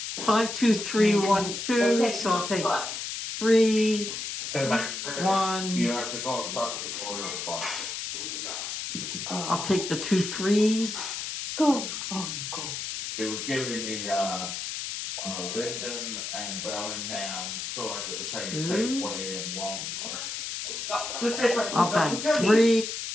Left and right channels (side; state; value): left; noise; hiss, 5 dB below the sound